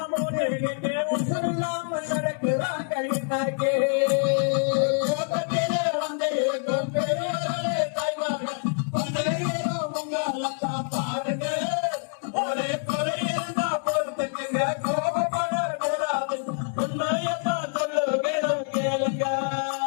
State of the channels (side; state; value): right; silent; digital silence